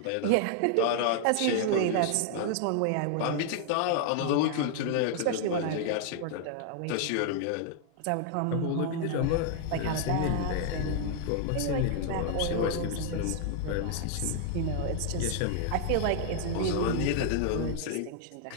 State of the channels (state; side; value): different; both; correlation 0.00